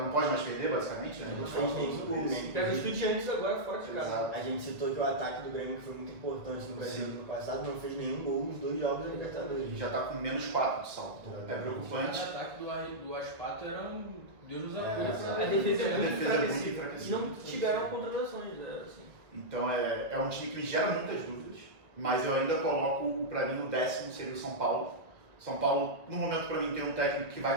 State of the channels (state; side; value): late; left; 1.9 ms